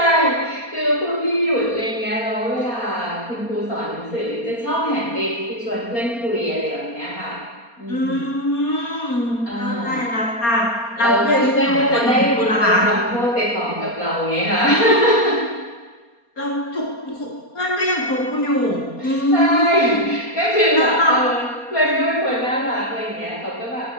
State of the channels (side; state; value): right; late; 4.3 ms